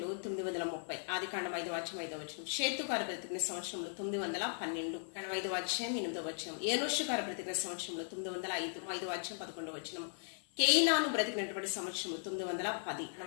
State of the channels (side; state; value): right; silent; 53 dB below the other